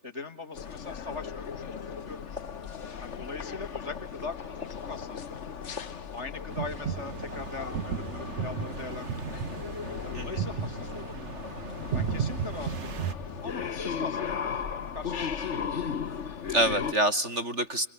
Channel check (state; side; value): late; left; 3.4 ms